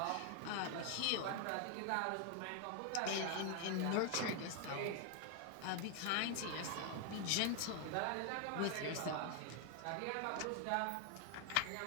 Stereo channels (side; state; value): both; different; correlation 0.01